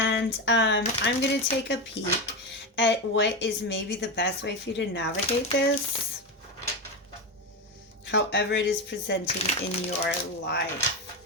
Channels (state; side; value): normal; both; correlation 0.15